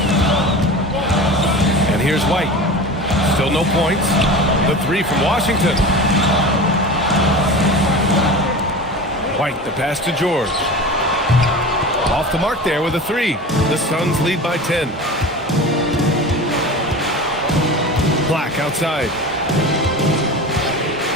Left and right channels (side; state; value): both; normal; correlation 0.32